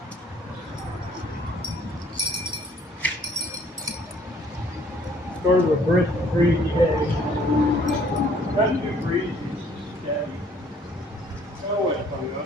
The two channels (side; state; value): both; normal; correlation 0.59